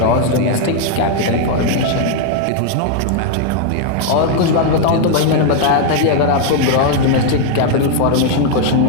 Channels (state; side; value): different; both; correlation 0.00